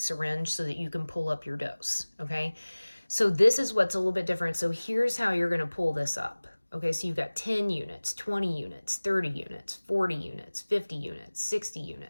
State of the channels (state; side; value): inverted; both; correlation -1.00